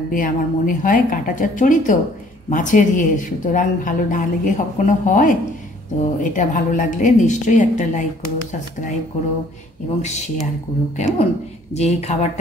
আমার মনে হয়। কাঁটা চচ্চড়ি তো মাছের সুতরাং ভালো না লেগে কখনো হয়। তো এটা ভালো লাগলে নিশ্চয়ই একটা লাইক করো, সাবস্ক্রাইব করো এবং শেয়ার করো, কেমন যে এই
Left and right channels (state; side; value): normal; both; correlation 0.58